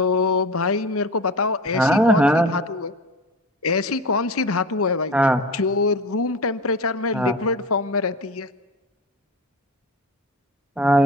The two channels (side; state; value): both; normal; correlation 0.31